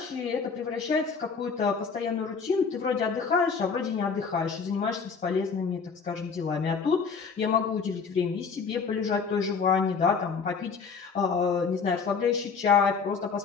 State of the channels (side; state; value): right; quieter; 5.4 dB